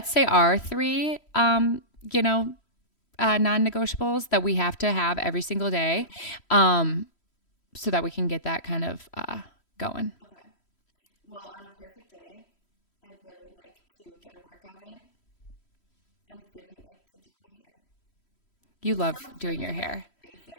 say our 3 non-negotiables that we have to have every single day. Okay. So that we can get that kind of going. Okay. Well, on a perfect day, I'd really like to get a workout in. I really like to do my hair. This sounds really like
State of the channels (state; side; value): late; right; 3.1 ms